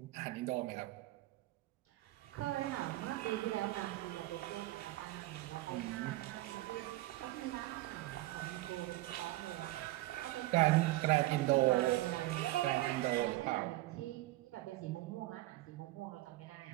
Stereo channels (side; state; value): left; quieter; 18.1 dB